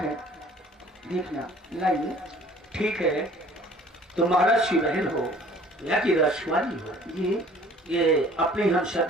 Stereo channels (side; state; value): both; normal; correlation 0.52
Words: देखना। लाइए। ठीक है, तुम महाराज की बहन हो या की राजकुमारी हो, ये अपनी हम